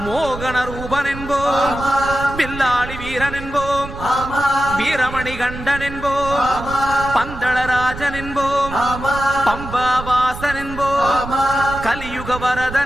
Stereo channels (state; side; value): noise; right; rumble, 11 dB below the sound